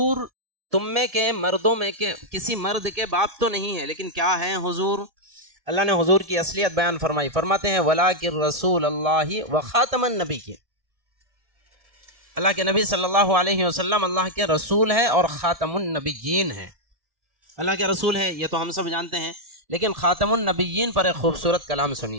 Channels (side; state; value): left; late; 1.7 ms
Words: تم میں کے مردوں میں کے کسی مرد کے باپ تو نہیں ہے، لیکن کیا ہے حضور؟ اللہ نے حضور کی اصلیت بیان فرمائی، فرماتے ہیں وَلَٰكِن رسول اللہ وخاتم النبیین، اللہ کے نبی صلی اللہ علیہ وسلم اللہ کے رسول ہے اور خاتم النبیین ہے۔ اللہ کے رسول ہے یہ تو ہم سب جانتے ہیں، لیکن خاتم النبیین پر ایک خوبصورت کلام